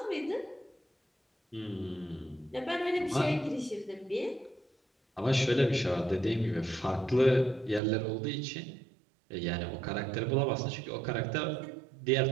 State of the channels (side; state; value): left; drops out; at 7.8 s